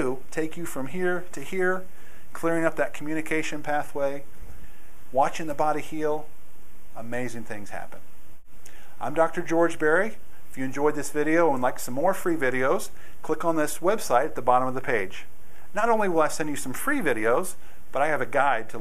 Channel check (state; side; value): identical; both; correlation 1.00